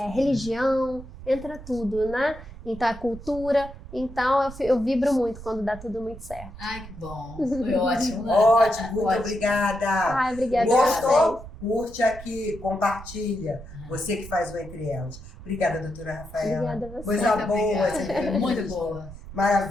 religião, entra tudo, né? Então é cultura. Então eu vibro muito quando dá tudo muito certo. Ai, que bom. Foi ótimo, né? Ótimo, muito Ótimo. obrigada. Ai, obrigada. Gostou? Curte aqui, compartilha. Você que faz o Entre Elas. Obrigada, doutora Rafaela. Obrigada a você. Coisa Muito boa. obrigada. essa entrevista. Muito boa.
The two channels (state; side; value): noise; right; rumble, 15 dB below the sound